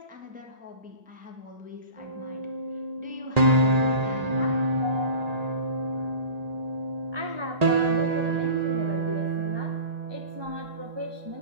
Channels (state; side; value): late; left; 1.8 ms